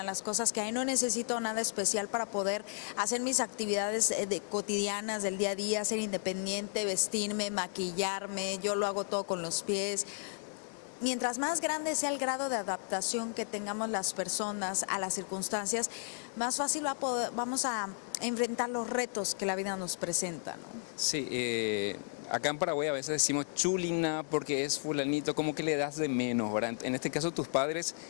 las cosas que hay. No necesito nada especial para poder hacer mis actividades cotidianas del día a día, ser independiente, vestirme, maquillarme, yo lo hago todo con los pies. Mientras más grande sea el grado de adaptación que tengamos las personas a las circunstancias, más fácil vamos a enfrentar los retos que la vida nos presenta, ¿no? Sí, acá en Paraguay a veces decimos chulina porque es fulanito, como que le das de menos, ¿verdad? En este caso tus padres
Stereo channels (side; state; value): right; silent; 55 dB below the other